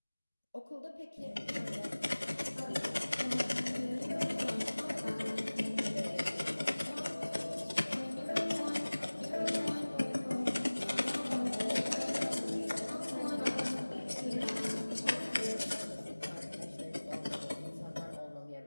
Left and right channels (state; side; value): inverted; both; correlation -1.00